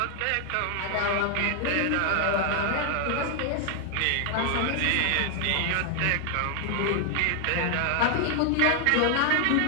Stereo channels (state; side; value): different; both; correlation 0.00